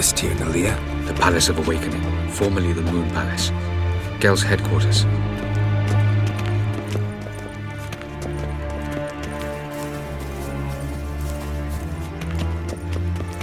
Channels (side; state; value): both; identical; correlation 1.00